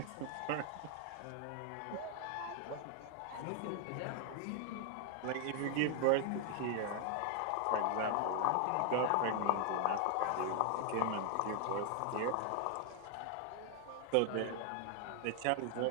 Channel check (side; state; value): both; different; correlation 0.00